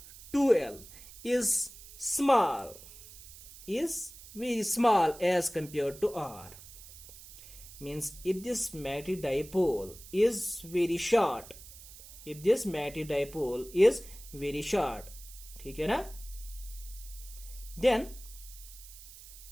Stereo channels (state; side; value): noise; right; hiss, 17 dB below the sound